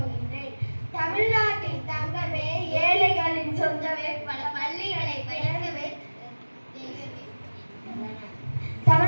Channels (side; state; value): both; inverted; correlation -1.00